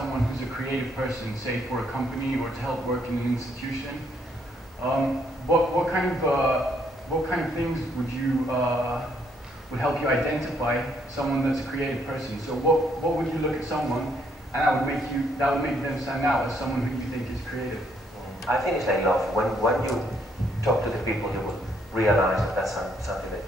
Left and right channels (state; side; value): normal; both; correlation 0.70